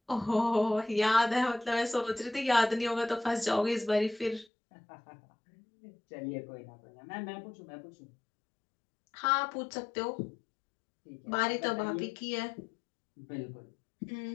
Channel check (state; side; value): drops out; right; at 4.5 s